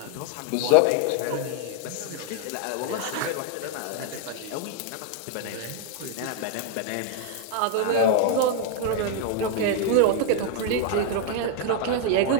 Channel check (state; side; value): different; both; correlation 0.00